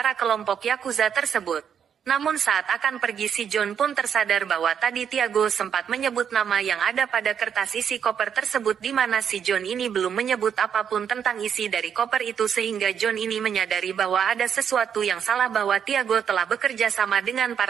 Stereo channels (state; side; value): quieter; left; 8.0 dB